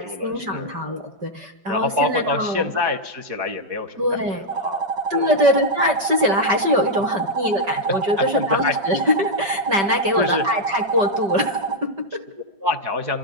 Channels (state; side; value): late; left; 5.1 ms